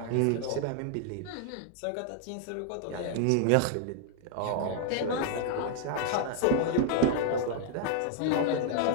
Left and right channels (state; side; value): different; both; correlation 0.00